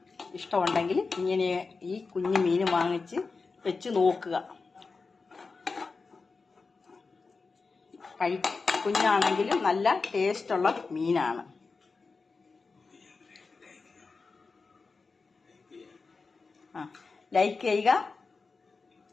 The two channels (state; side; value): quieter; right; 4.3 dB